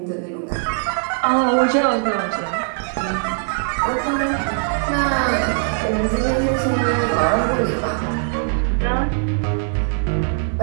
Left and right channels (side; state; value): left; silent; 64 dB below the other